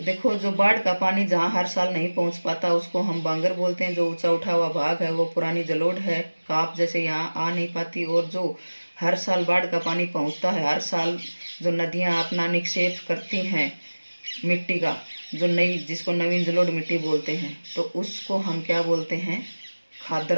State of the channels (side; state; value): both; inverted; correlation -1.00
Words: देखो जो बाढ़ का पानी जहाँ हर साल नहीं पहुँच पाता उसको हम बांगर बोलते हैं। जो ऊंचा उठा हुआ भाग है वो पुरानी जलोढ़ है, काप जैसे यहाँ आ नहीं पाती। और जो हर साल बाढ़ का पानी पहुँचता है, हर साल जो नदियाँ अपना निक्षेप करती हैं मिट्टी का, जो नई, जिसको नवीन जलोढ़ मिट्टी बोलते हैं, तो उसको हम क्या बोलते हैं,